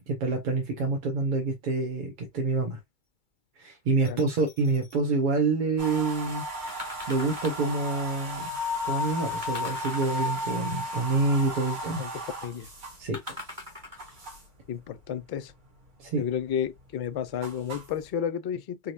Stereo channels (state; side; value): late; left; 2.3 ms